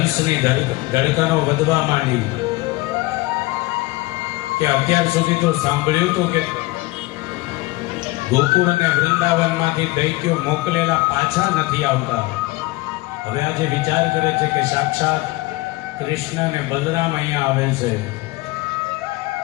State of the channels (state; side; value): quieter; right; 21.1 dB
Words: ધડકનો વધવા માંડી કે અત્યાર સુધી તો સાંભળ્યું હતું કે ગોકુળ અને વૃંદાવનમાંથી દૈત્યો મોકલેલા પાછા નથી આવતા. હવે આજે વિચાર કરે છે કે સાક્ષાત કૃષ્ણ અને બલરામ અહીંયા આવેલ છે